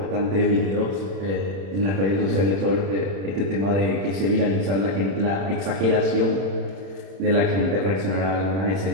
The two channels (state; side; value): late; left; 31 ms